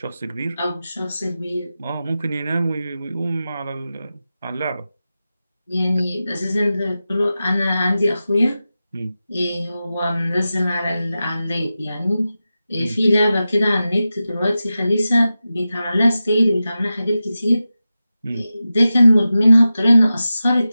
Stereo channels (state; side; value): inverted; both; correlation -0.93